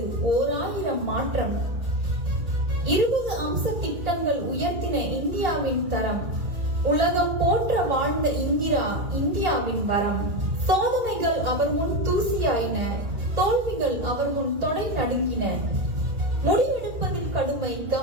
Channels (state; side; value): late; left; 2.8 ms